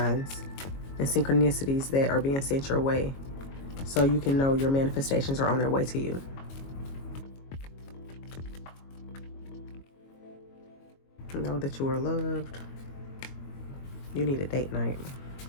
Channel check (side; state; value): right; late; 22 ms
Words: and synchronicities that are being sent your way, so you can know your manifestations are on their way to you. Know that you are loved. You need a date night,